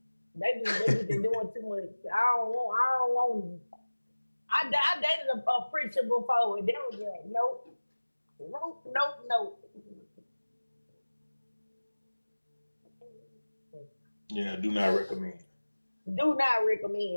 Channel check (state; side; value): inverted; both; correlation -1.00